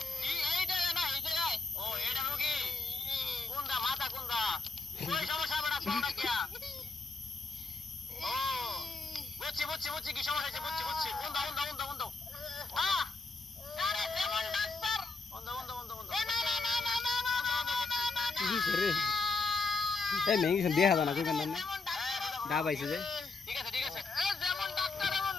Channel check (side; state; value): right; quieter; 3.8 dB